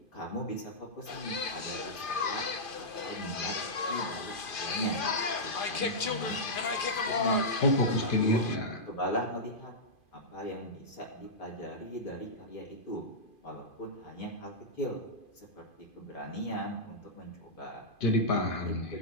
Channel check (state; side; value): late; right; 2.5 ms